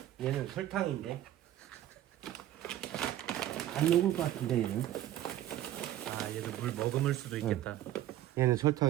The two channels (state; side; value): quieter; left; 13.0 dB